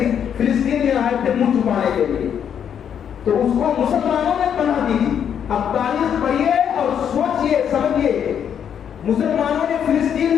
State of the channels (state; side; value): quieter; right; 8.5 dB